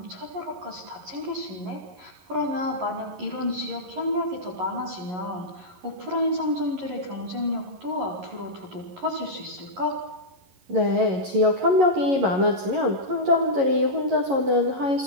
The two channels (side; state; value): left; late; 11 ms